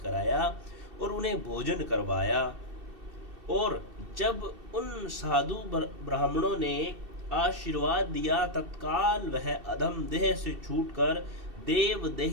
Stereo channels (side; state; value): left; late; 2.7 ms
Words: और उन्हें भोजन करवाया। और जब उन साधु ब्राह्मणों ने आशीर्वाद दिया, तत्काल वह अधम देह से छूटकर देव